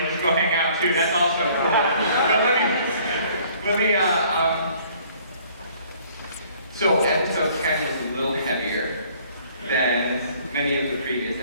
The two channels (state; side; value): inverted; both; correlation -0.58